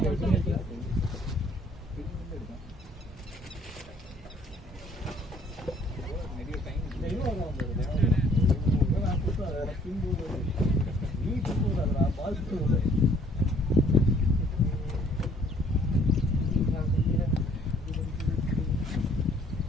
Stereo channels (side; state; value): both; normal; correlation 0.60